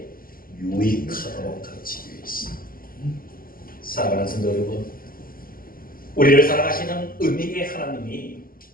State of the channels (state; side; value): late; right; 0.42 ms